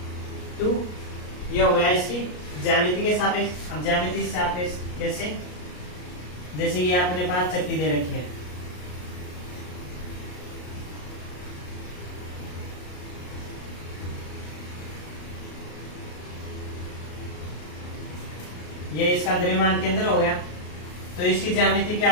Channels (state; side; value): late; right; 33 ms